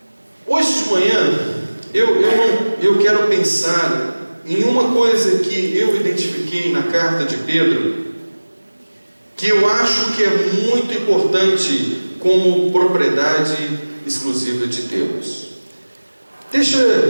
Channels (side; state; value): both; inverted; correlation -1.00